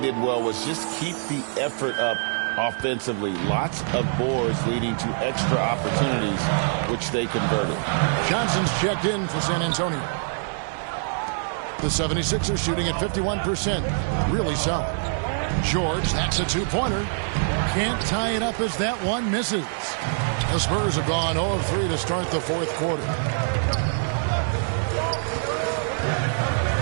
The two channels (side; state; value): left; silent; 56 dB below the other